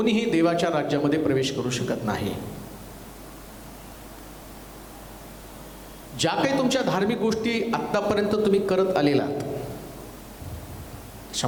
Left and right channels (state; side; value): identical; both; correlation 1.00